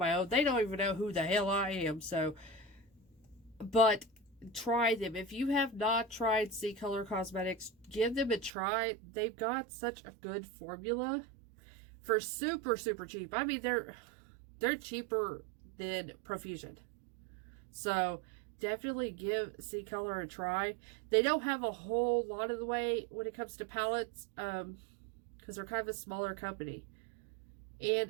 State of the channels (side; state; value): left; drops out; at 8.5 s